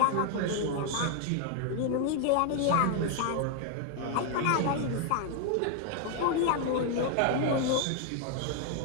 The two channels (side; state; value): both; different; correlation 0.00